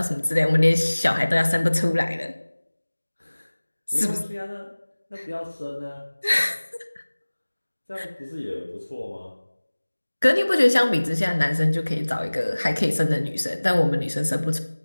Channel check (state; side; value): inverted; both; correlation -1.00